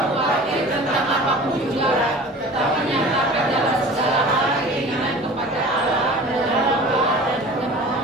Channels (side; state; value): both; normal; correlation 0.41